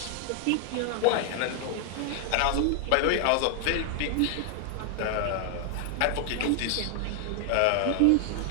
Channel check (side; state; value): both; different; correlation 0.00